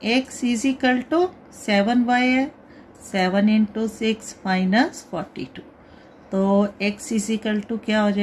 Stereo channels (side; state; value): both; identical; correlation 1.00